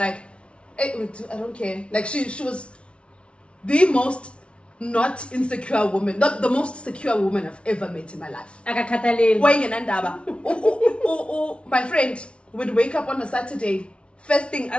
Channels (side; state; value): right; late; 0.059 ms